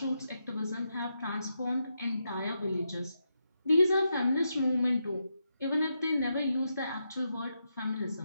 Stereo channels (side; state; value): both; inverted; correlation -0.84